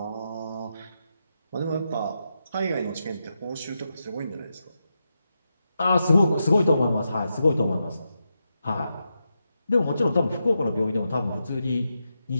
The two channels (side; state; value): both; inverted; correlation -0.86